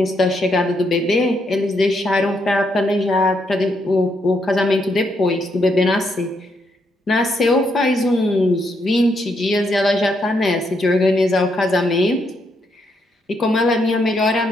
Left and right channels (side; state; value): both; normal; correlation 0.77